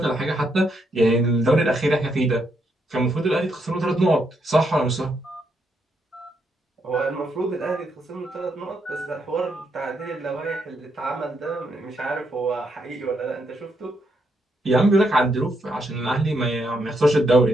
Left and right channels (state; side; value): normal; both; correlation 0.78